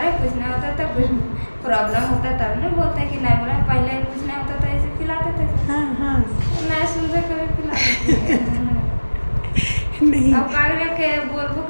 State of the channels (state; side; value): inverted; both; correlation -1.00